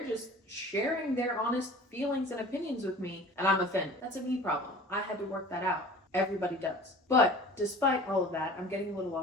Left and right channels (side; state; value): both; normal; correlation 0.43